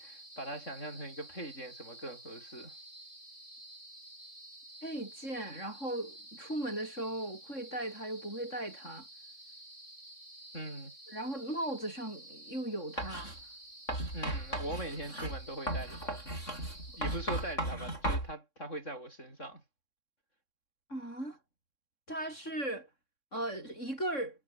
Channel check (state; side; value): late; right; 3.6 ms